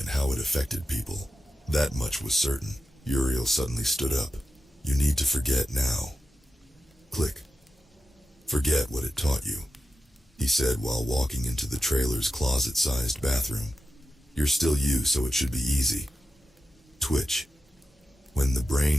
how it affected people. That much was certain. Uriel suddenly stood up. You need to forget now. Click. Forget what it taught you, he said while walking into the trailer's closet-sized bathroom. You're still you, so it should be easy. Twitch. When the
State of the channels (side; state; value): both; normal; correlation 0.91